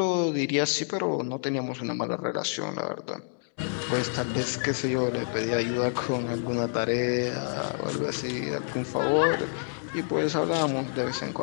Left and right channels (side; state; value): right; silent; digital silence